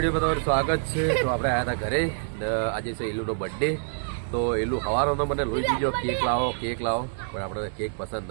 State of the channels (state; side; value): silent; left; digital silence